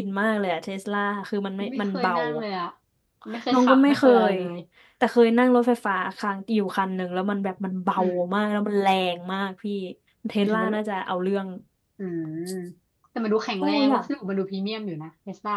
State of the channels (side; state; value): both; identical; correlation 1.00